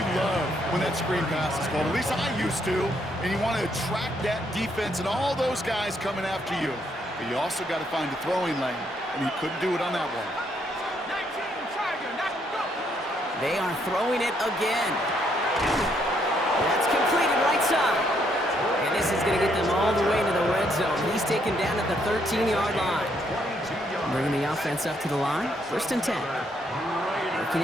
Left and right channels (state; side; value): normal; both; correlation 0.73